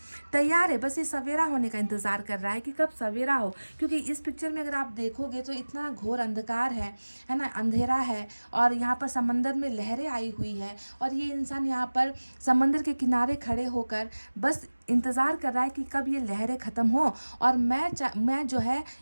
तैयार है। बस ये सवेरा होने का इंतजार कर रहा है कि कब सवेरा हो, क्योंकि इस पिक्चर में अगर आप देखोगे तो इतना घोर अंधकार है ना, अंधेरा है और यहाँ पर समंदर में लहरें आई हुई है और ये इंसान यहाँ पर समंदर के किनारे खड़े होकर बस इंतज़ार कर रहा है कि कब ये लहरें ख़त्म हो और मैं जो है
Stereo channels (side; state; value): both; inverted; correlation -1.00